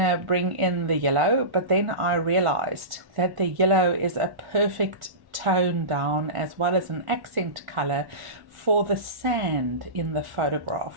bring in the yellow, but then I realized that the yellow is a perfect tone down as well as an accent color for the sand in the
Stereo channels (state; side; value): late; left; 1.4 ms